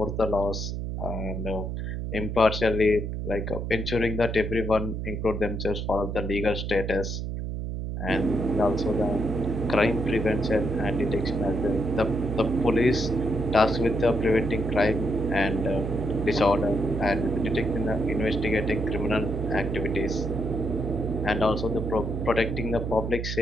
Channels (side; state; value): right; noise; hum, 4 dB below the sound